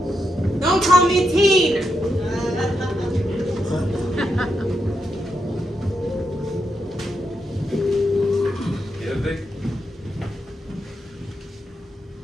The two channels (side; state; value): both; normal; correlation 0.84